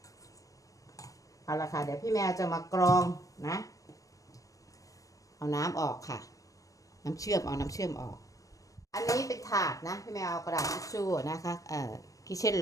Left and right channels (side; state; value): right; late; 0.16 ms